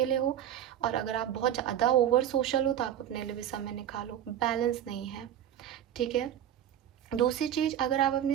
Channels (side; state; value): left; quieter; 10.7 dB